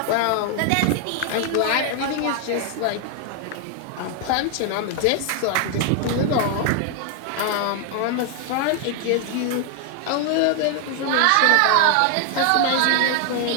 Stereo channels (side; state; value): both; different; correlation 0.00